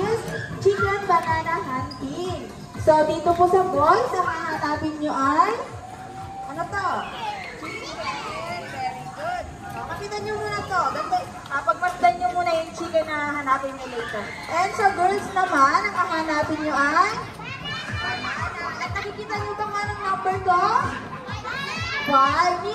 Chicken Banana Hunting. So, dito po sa boys, ang hahanapin nyo ay... Ano to? Chicken. Very good. So, kapitan nyo muna to. Pagmasdan nyo muna yung chicken na hahanapin nyo later. And sa girls naman, ang hahanapin nyo ay... banana. At nakikita nyo ba nga ng number to? 5,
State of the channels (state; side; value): identical; both; correlation 1.00